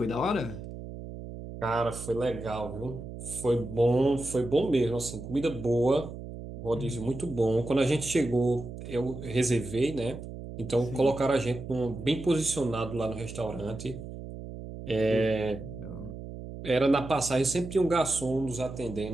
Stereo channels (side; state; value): right; noise; hum, 11 dB below the sound